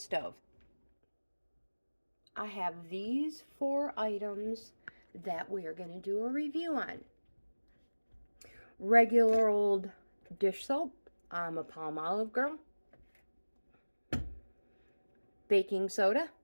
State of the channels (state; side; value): inverted; both; correlation -1.00